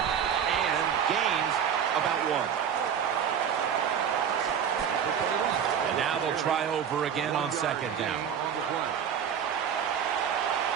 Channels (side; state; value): left; quieter; 8.2 dB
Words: and gains about 1. And now they'll try over again on 2nd down.